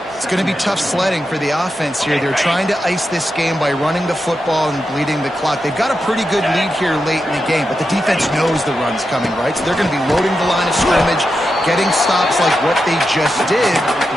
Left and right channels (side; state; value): both; normal; correlation 0.88